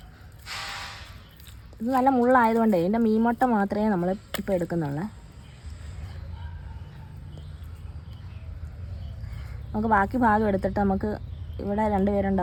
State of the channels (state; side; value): identical; both; correlation 1.00